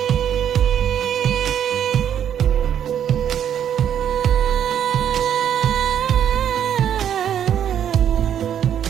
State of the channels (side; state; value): left; quieter; 9.5 dB